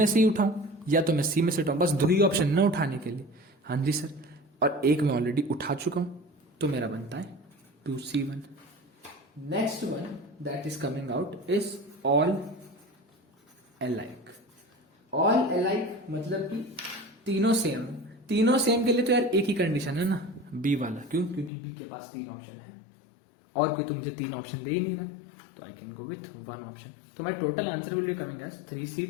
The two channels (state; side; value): drops out; right; at 21.5 s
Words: से ही उठाऊं या तो मैं सी में से उठाऊं, बस 2 ही ऑप्शन ना उठाने के लिए। हाँ जी सर। और एक मैं ऑलरेडी उठा चुका हूं, तो मेरा बनता है 2c1। Next one that is coming out is all alike. All alike मतलब कि तीनों सेम। तीनों सेम के लिए तो यार एक ही कंडीशन है ना, बी वाला। क्यों? क्योंकि बी के पास 3 ऑप्शन है और कोई तो मुझे 3 ऑप्शन दे ही नहीं रहा है, तो I can go with 1 option. तो my total answer will be coming as